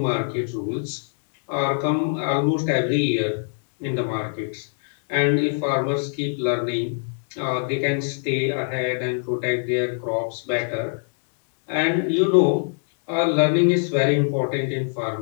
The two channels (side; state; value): right; silent; digital silence